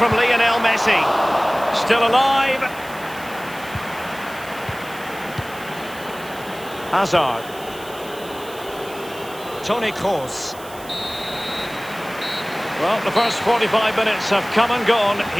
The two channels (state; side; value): noise; right; hiss, 18 dB below the sound